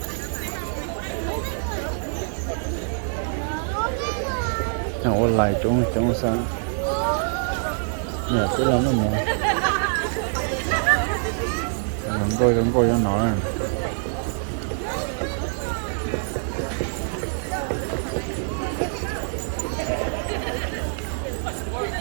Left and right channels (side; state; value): left; silent; digital silence